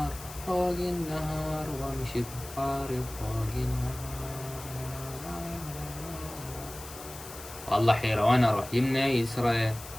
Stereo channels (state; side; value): noise; left; hiss, 14 dB below the sound